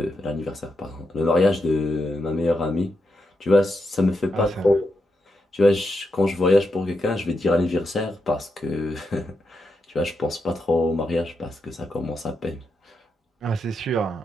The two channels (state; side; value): normal; both; correlation 0.85